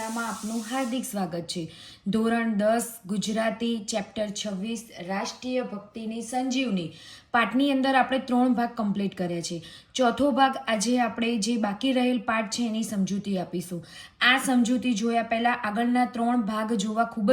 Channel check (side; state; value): both; identical; correlation 1.00